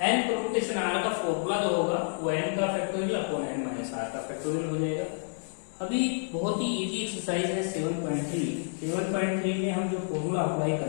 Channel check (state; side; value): silent; right; digital silence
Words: n permutation r का फॉर्मूला जो होगा वो n का factorial upon n minus r का फैक्टोरियल हो जाएगा। अभी बहुत ही इजी एक्सरसाइज है 7.3 में हम जो फॉर्मूला अप्लाई